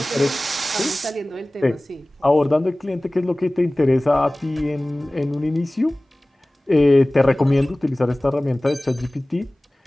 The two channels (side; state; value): both; normal; correlation 0.98